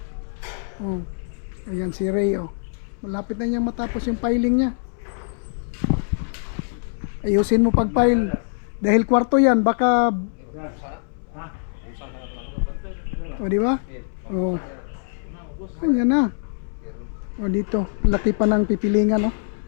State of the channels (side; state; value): right; silent; 63 dB below the other